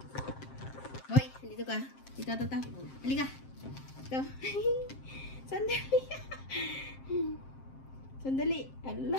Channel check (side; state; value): right; late; 7.6 ms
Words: Hoy, dito ka. Dito. Halika. Dito. Sandali. Sandali.